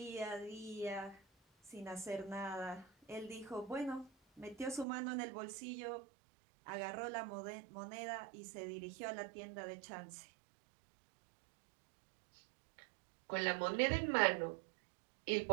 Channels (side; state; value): left; drops out; at 4.9 s